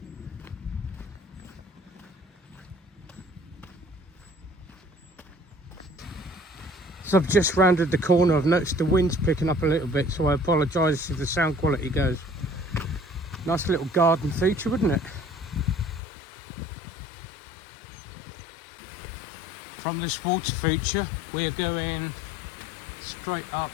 So I've just rounded the corner. I've noticed the wind's picking up a little bit, so I apologise if the sound quality goes. Nice little garden feature, wouldn't it? From this water feature, we're going straight up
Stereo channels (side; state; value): right; drops out; at 16.0 s